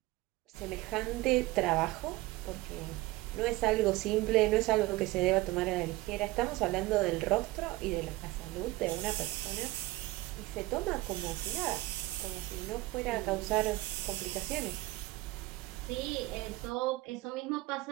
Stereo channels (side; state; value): left; quieter; 19.1 dB